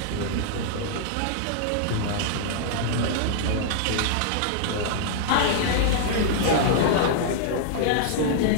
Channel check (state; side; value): different; both; correlation -0.01